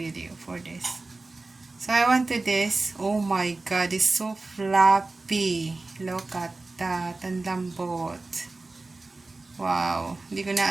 for this. So I want to this. Oh my god, it's so fluffy. Look at that. Ang lambot. Wow. Hindi ko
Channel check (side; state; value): left; quieter; 3.3 dB